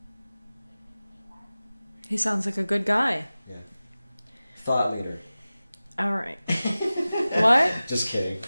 He sounds like a good guy. Yeah. Thought leader. All right. What? Just kidding.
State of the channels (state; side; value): inverted; both; correlation -0.97